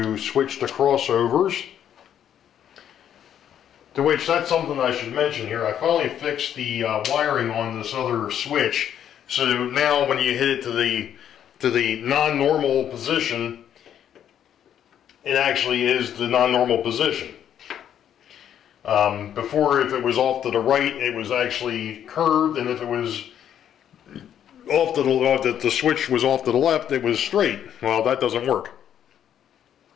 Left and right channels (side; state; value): right; quieter; 9.8 dB